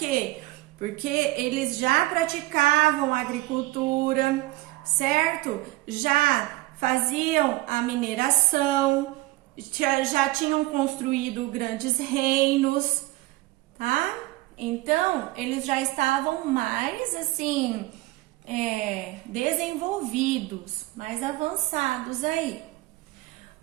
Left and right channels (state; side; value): quieter; left; 19.2 dB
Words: Porque eles já praticavam agricultura, certo? Já faziam a mineração, já tinham construído grandes reinos, tá? Então, eles já estavam mais, assim, desenvolvidos, mais avançados aí.